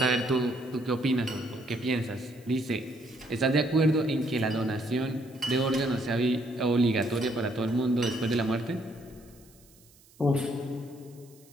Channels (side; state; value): right; noise; hiss, 28 dB below the sound